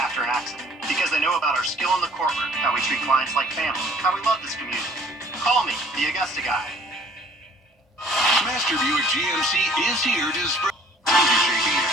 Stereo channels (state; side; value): normal; both; correlation 0.55